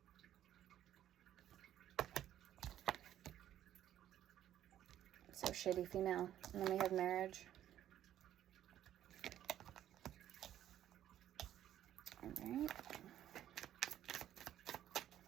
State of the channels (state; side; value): quieter; left; 11.6 dB